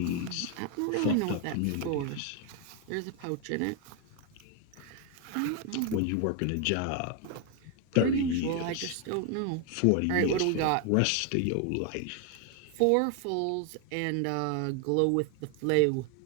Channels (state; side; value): different; both; correlation 0.01